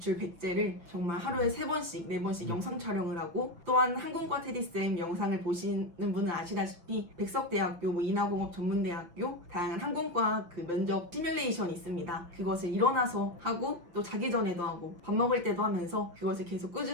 100제를 정말 하루에 3번씩 4번씩 영상 촬영을 하고 또한 항공과 테디쌤 영상을 보시는 분은 아시다시피 백석대학교, 인하공업 전문대학교 다양한 항공과 그 면접 시뮬레이션이 있습니다. 그것을 일어나서 하고 또 자기 전에도 하고 밥 먹을 때도 하면서 그것을 계속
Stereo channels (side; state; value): left; late; 6.1 ms